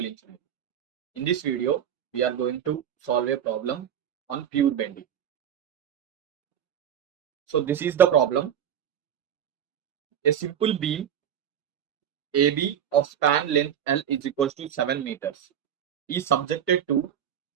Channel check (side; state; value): left; quieter; 9.4 dB